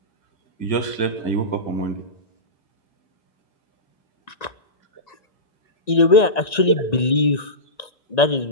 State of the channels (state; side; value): late; right; 1.9 ms